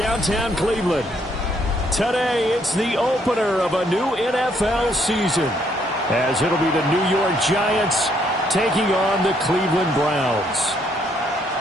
Cleveland. Today, it's the opener of a new NFL season, as it'll be the New York Giants taking on the Cleveland Browns.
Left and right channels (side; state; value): both; normal; correlation 0.70